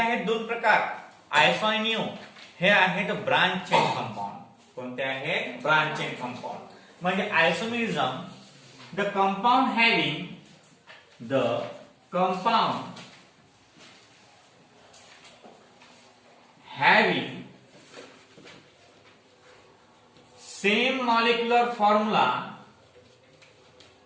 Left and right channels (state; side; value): identical; both; correlation 1.00